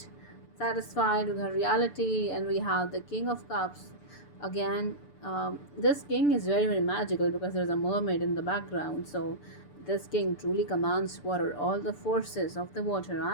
satisfied with her reality. And we have the King of Cups again. This king is very magical because there's a mermaid in the background. So this king truly commands water. All the forces of the water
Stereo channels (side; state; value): right; late; 6.9 ms